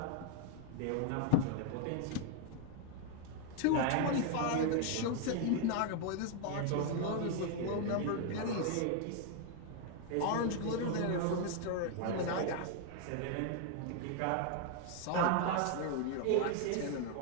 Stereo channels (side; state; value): both; different; correlation 0.00